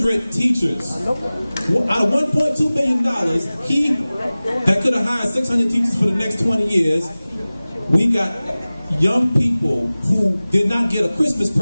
teachers. Out of $1.2 billion, that could have hired 600 teachers for the next 20 years, we got young people who did not get a Christmas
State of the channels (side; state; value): both; inverted; correlation -0.98